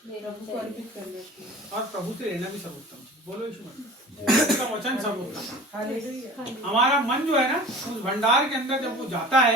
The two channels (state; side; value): normal; both; correlation 0.41